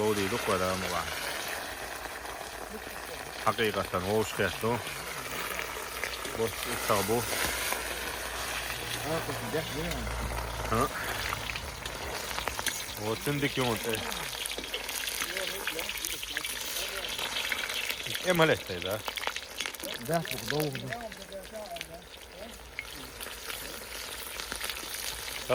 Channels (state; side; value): identical; both; correlation 1.00